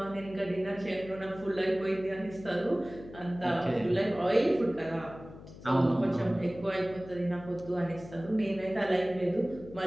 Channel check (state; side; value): noise; left; hum, 16 dB below the sound